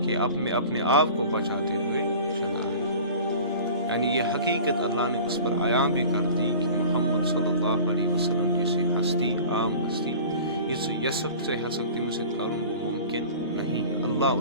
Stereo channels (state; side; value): inverted; both; correlation -0.41